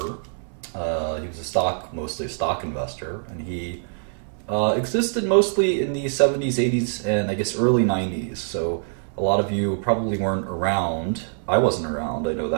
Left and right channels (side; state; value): left; silent; 62 dB below the other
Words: He was mostly a stock investor, and he existed mostly in the 70s, 80s, and I guess early 90s. So a lot of you probably weren't around. I wasn't around, I know